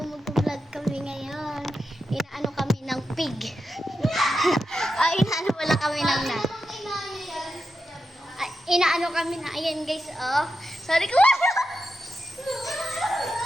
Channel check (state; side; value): normal; both; correlation 0.88